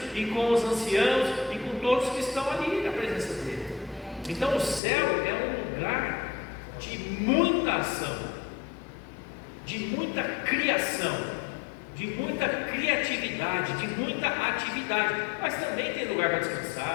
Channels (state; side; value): drops out; right; at 4.8 s